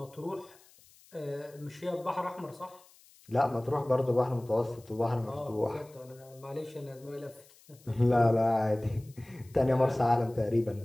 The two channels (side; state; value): left; noise; hiss, 27 dB below the sound